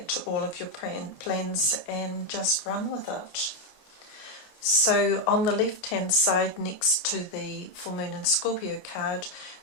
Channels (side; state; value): right; late; 28 ms